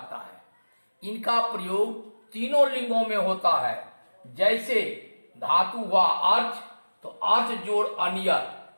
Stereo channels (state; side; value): inverted; both; correlation -1.00